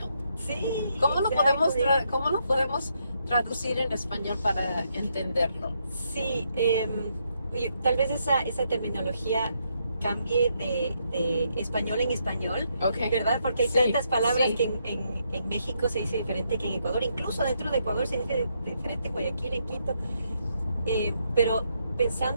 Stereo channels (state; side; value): inverted; both; correlation -0.77